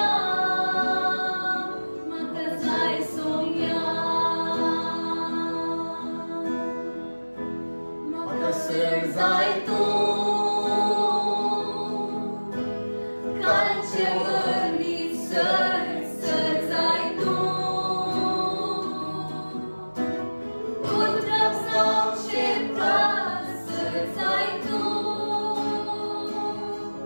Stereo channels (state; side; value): inverted; both; correlation -1.00